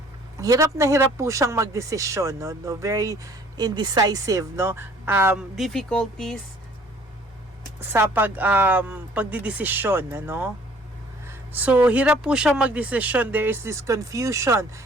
Hirap na hirap po siyang magdesisyon, no? Very indecisive, no? Difficulties sa pagdidesisyon, ano? So, hirap po siyang magdesisyon. There is this confusion,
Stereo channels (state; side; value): normal; both; correlation 0.56